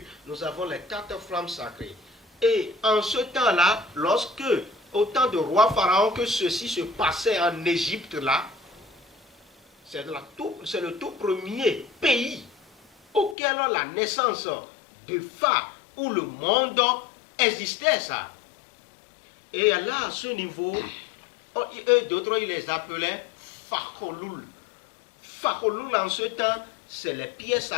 nous avons les 4 flammes sacrées. Et en ce temps-là, lorsque, au temps de roi Pharaon, que ceci se passait en Égypte là, c'est le tout premier pays auquel la naissance de Pha, où le monde existait ça. Et là, à ce niveau, eux d'autres, ils les appelaient Fakholul. Fakholul, en ce temps, c'est les pièces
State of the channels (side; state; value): right; drops out; at 13.4 s